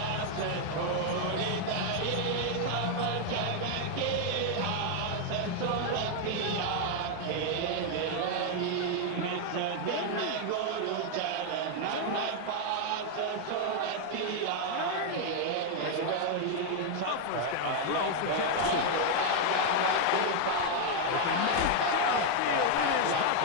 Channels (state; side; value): different; both; correlation 0.00